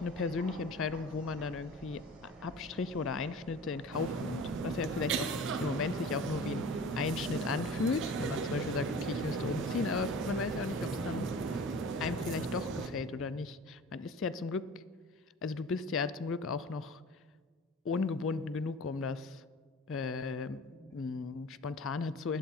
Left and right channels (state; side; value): normal; both; correlation 0.40